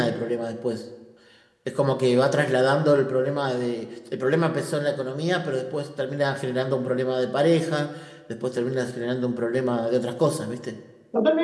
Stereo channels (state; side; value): identical; both; correlation 1.00